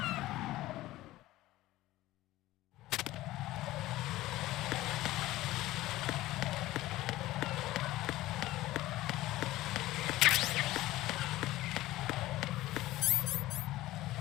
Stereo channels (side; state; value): right; quieter; 16.7 dB